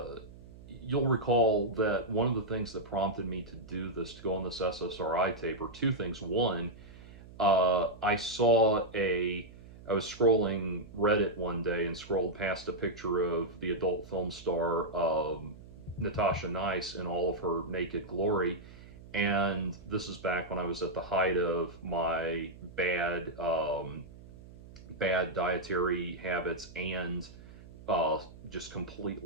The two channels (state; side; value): noise; right; hum, 18 dB below the sound